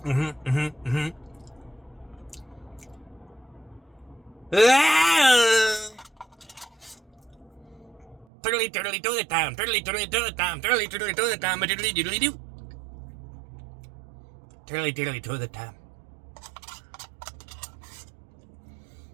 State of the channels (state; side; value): drops out; left; at 8.2 s